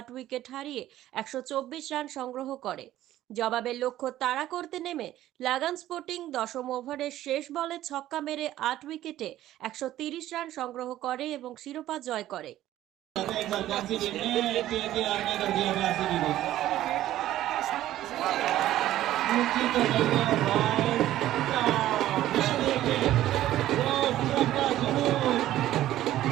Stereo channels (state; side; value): quieter; left; 13.7 dB